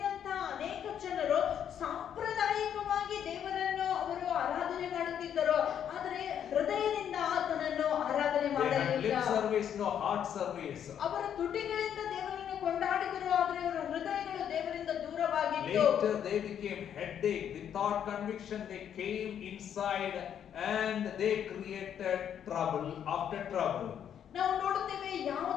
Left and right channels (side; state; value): right; quieter; 9.1 dB